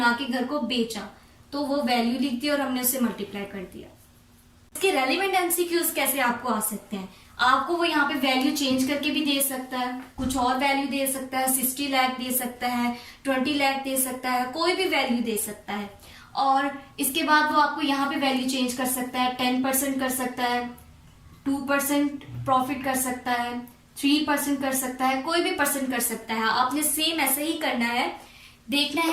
के घर को बेचा, तो वो वैल्यू लिख दी और हमने उसे मल्टीप्लाई कर दिया। इसके रेलिवेंट एमसीक्यूज कैसे आपको आ सकते हैं, आपको वो यहाँ पे वैल्यू चेंज करके भी दे सकता है, कुछ और वैल्यू दे सकता है, 60 लाख दे सकता है, 20 लाख दे सकता है, कोई भी वैल्यू दे सकता है। और इसके बाद वो आपको यहाँ पे वैल्यू चेंज कर सकता है, 10% कर सकता है, 2% प्रॉफिट कर सकता है, 3% कर सकता है, कोई भी परसेंट कर सकता है। आपने सेम ऐसे ही करना है, देखना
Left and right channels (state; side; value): identical; both; correlation 1.00